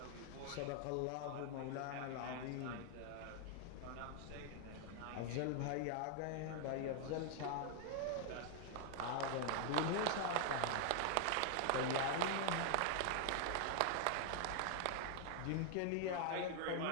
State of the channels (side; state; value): both; different; correlation 0.00